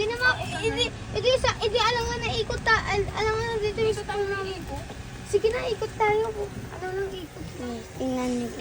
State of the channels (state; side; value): identical; both; correlation 1.00